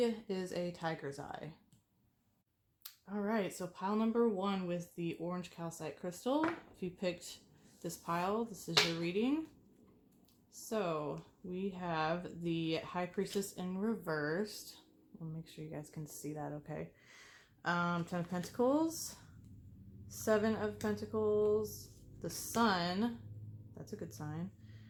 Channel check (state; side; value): identical; both; correlation 1.00